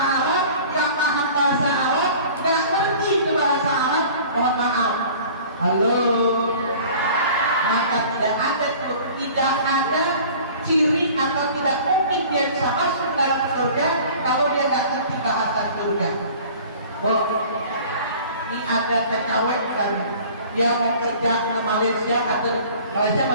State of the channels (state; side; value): inverted; both; correlation -0.46